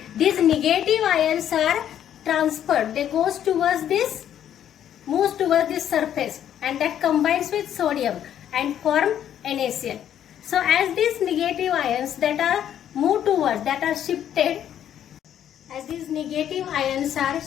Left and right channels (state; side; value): quieter; right; 10.2 dB